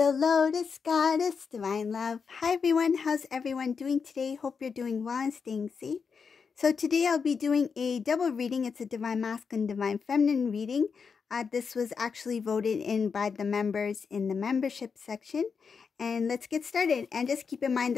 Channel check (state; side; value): quieter; right; 5.7 dB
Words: Lotus Goddess Divine Love. Hi everyone, how's everyone doing today? Hope you're doing well and staying safe. So today I'll be doing a double reading. It's a Divine Masculine, Divine Feminine reading. This was actually voted in by the members in the membership section. And let's get started. And just keep in mind